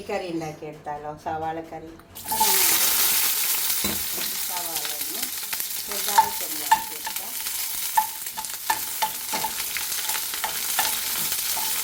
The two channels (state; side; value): identical; both; correlation 1.00